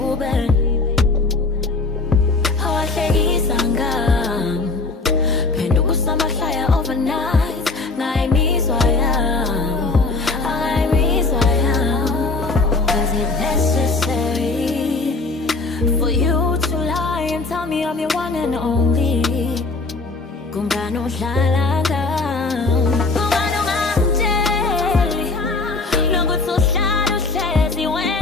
Hawahlekisa ngami phenduka usamahlaya overnight. Ngayimizwa yami, angayimizwa yami. Was it necessary for you to lie and tell me I'm your one and only? Kungani udlala ngami? Kungani ungamtsheli nokuthi uhlala uhlezi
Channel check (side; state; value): right; quieter; 3.7 dB